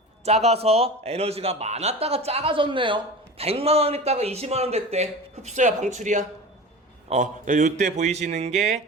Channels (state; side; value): normal; both; correlation 0.33